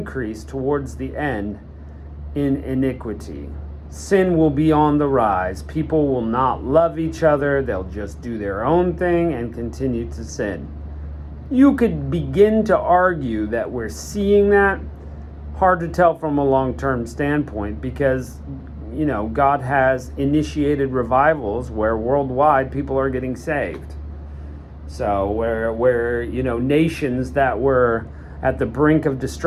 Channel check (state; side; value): identical; both; correlation 1.00